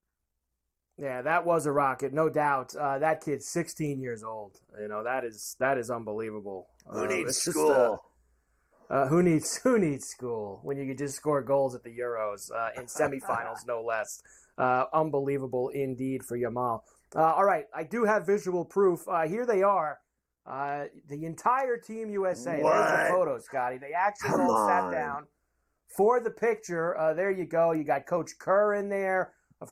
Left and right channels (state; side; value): identical; both; correlation 1.00